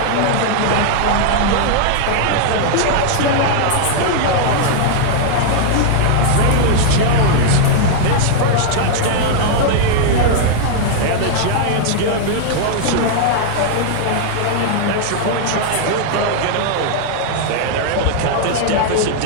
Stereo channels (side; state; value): both; different; correlation -0.01